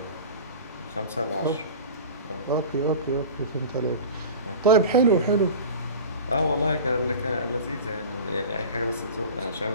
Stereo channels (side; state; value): both; inverted; correlation -0.35